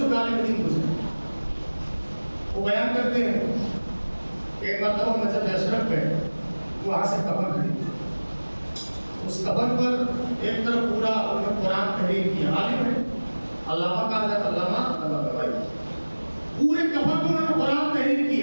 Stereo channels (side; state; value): both; inverted; correlation -1.00